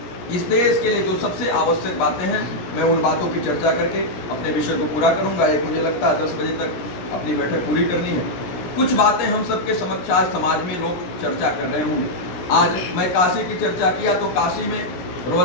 इस देश के लिए जो सबसे आवश्यक बातें हैं, मैं उन बातों की चर्चा करके अपने विषय को पूरा करूंगा। एक मुझे लगता है 10 बजे तक अपनी बैठक पूरी करनी है। कुछ बातें हम सबके समक्ष आज समाज में लोग चर्चा कर रहे होंगे। आज मैं काशी की चर्चा किया तो काशी में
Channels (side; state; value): right; late; 17 ms